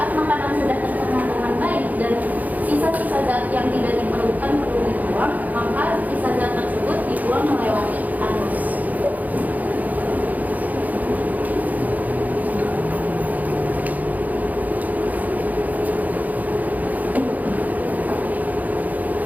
makanan sudah tercerna dengan baik dan sisa-sisa zat yang tidak diperlukan perlu dibuang, maka sisa zat tersebut dibuang melewati anus.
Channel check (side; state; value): left; late; 0.079 ms